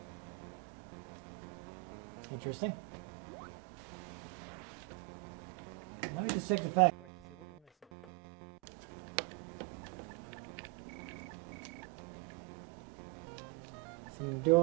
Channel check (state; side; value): quieter; left; 26.4 dB